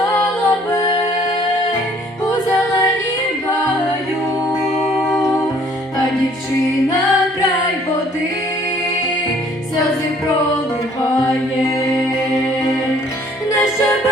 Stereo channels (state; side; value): normal; both; correlation 0.59